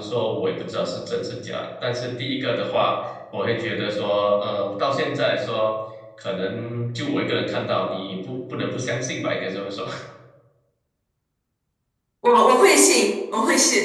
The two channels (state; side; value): identical; both; correlation 1.00